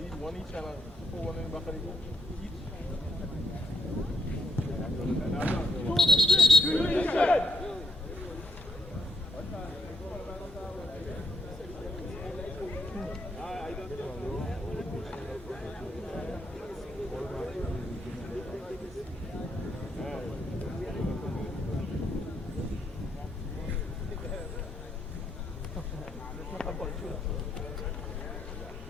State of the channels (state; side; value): normal; both; correlation 0.78